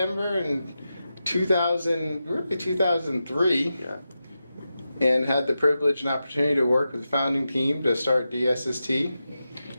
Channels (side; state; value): both; inverted; correlation -0.90